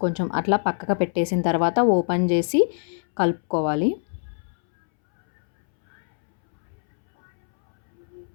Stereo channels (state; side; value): silent; right; 63 dB below the other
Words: కొంచెం అట్లా పక్కకు పెట్టేసిన తర్వాత ఓపెన్ చేసి కలుపుకోవాలి.